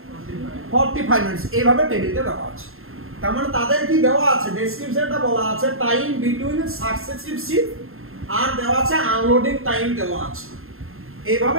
45 মিনিটস, এইভাবে টেবিলটা দেওয়া আছে। তার মানে তাদের কি দেওয়া আছে, ডেসক্রিপশনটা বলা আছে টাইম বিটুইন সাকসেসিভ শিফট, আর দেওয়া আছে আনলোডিং টাইম দেওয়া আছে,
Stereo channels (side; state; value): left; late; 0.61 ms